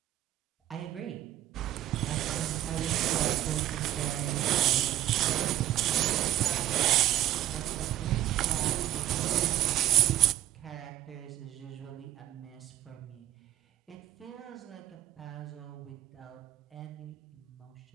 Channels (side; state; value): left; quieter; 13.3 dB